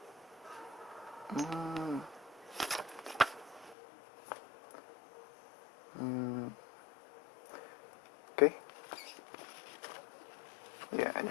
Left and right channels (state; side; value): drops out; right; at 3.8 s